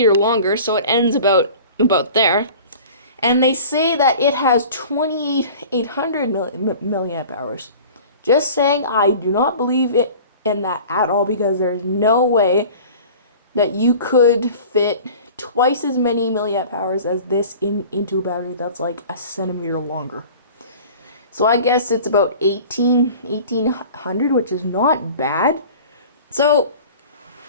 longer, so it ends about there. And they say that it has 2,800 milliamp hours. Just saying, I do not believe it in that at all, because there's no way that you could fit twice as many milliamp hours as this into a battery that's like a centimeter longer. So I guess it's about 1,800, which is not bad. So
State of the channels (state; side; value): inverted; both; correlation -0.42